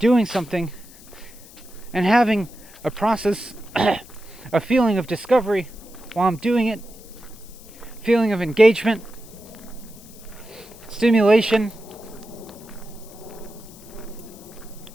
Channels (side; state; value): left; noise; hiss, 21 dB below the sound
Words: something, and having a process, a feeling of discovery while I'm doing it, feeling of engagement, stimulation,